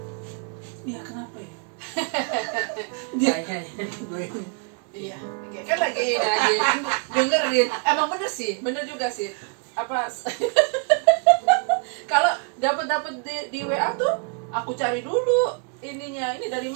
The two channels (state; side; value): quieter; left; 39.8 dB